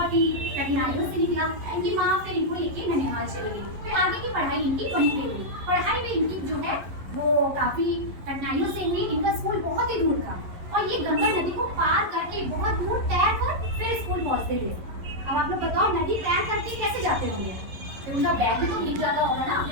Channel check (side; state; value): left; late; 11 ms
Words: ही कठिनाइयों से निकला। इनकी माँ फिर इनको लेके ननिहाल चली गई। फिर आगे की पढ़ाई इनकी वहीं पे हुई। पढ़ाई में इनकी जो है वो काफी कठिनाइयों से हुई। इनका स्कूल बहुत ही दूर था और ये गंगा नदी को पार करके बहुत दूर तैर कर फिर स्कूल पहुंचते थे। अब आप लोग बताओ, नदी तैर करके कैसे जाते होंगे? फिर उनका बैग भी तो भीग जाता होगा ना?